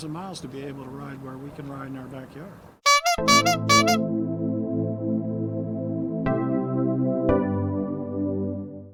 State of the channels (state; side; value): identical; both; correlation 1.00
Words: miles to be able to ride where we can ride in our backyard.